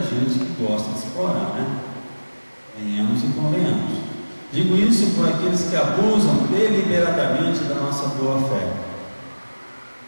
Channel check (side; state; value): both; inverted; correlation -1.00